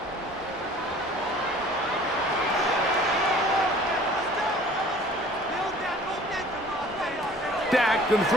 Dak going to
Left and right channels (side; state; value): both; normal; correlation 0.49